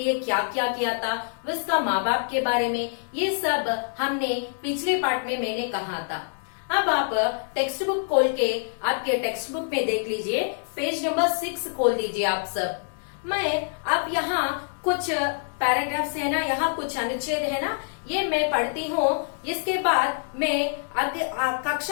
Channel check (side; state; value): right; silent; digital silence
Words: क्या क्या किया था, उसका माँ बाप के बारे में, ये सब हमने पिछले पाठ में मैंने कहा था। अब आप टेक्स्ट बुक खोल के आपके टेक्स्ट बुक में देख लीजिए, पेज नंबर 6 खोल दीजिए आप सब। मैं अब यहाँ कुछ पैराग्राफ्स है ना, यहाँ कुछ अनुच्छेद है ना, ये मैं पढ़ती हूँ। इसके बाद मैं